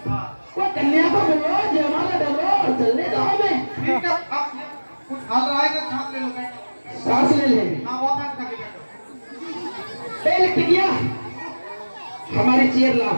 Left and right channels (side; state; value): both; inverted; correlation -1.00